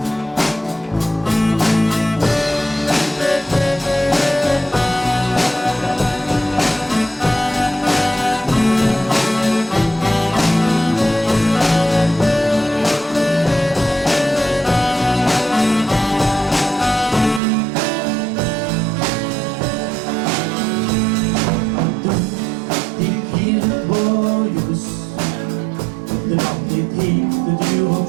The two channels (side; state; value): left; drops out; at 17.4 s